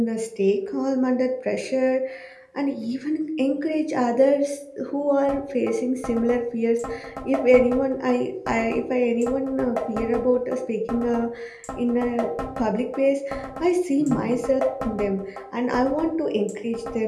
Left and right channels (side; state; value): both; identical; correlation 1.00